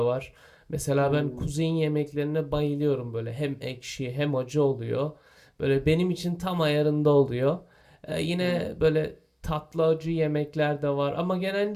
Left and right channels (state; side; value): identical; both; correlation 1.00